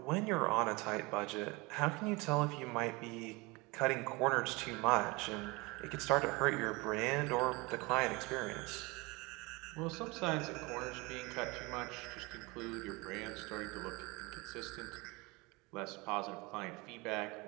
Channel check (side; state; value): left; quieter; 25.2 dB